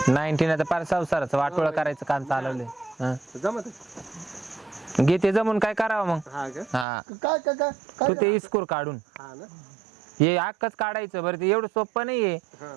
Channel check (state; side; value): drops out; left; at 6.9 s